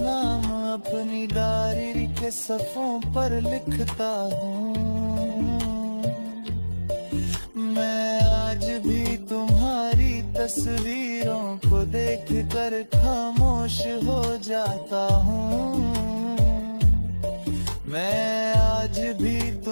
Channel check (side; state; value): both; inverted; correlation -1.00